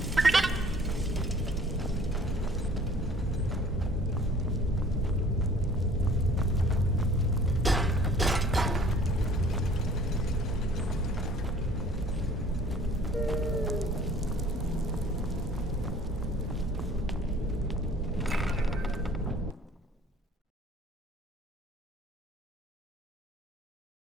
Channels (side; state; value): both; normal; correlation 0.52